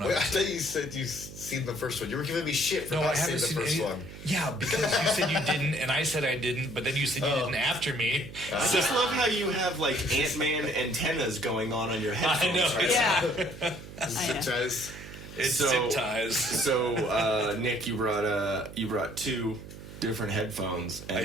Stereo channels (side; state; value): right; noise; hum, 14 dB below the sound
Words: Wait, I thought you said you've seen the first one. You were giving me shit for No, I not haven't seeing the seen first any. one. Yeah, because you said you didn't, and I said I didn't, but then you said you didn't after me. I just love how you have like Ant-Man antennas going on your headphones. know, Right? Yeah. I know. Sometimes. It's So- zip ties. So, Nick, you brought 2 different headphones, and I